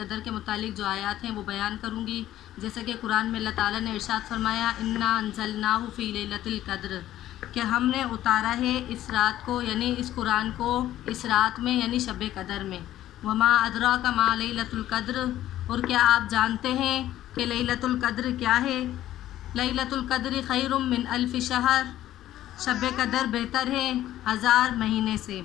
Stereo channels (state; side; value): quieter; right; 13.3 dB